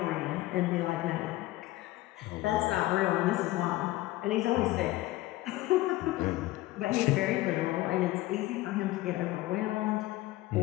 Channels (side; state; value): right; quieter; 17.4 dB